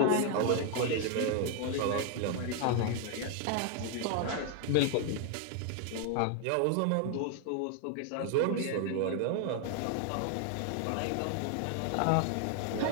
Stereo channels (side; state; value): both; different; correlation 0.00